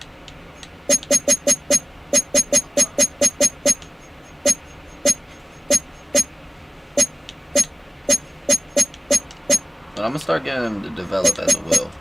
But I'm gonna start getting him to develop as a will.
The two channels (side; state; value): both; normal; correlation 0.96